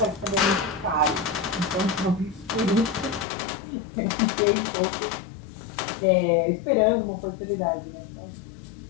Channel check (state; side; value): drops out; right; at 3.2 s